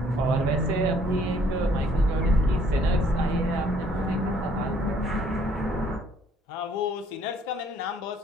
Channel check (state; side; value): normal; both; correlation 0.62